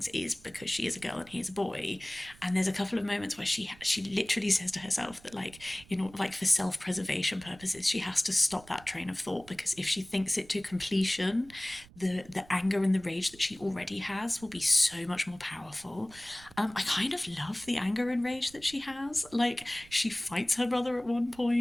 is because she is a girl and he is a boy. And there's a couple of moments where she literally says to herself that like, you know, like for self-preservation purposes, she has to stop that train of thought, because if she thinks it to completion, the anger and the rage that she already has will be so much more powerful. I kind of love the anger and rage that she has. Like, she fights her brother at one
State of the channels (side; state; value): right; noise; rumble, 23 dB below the sound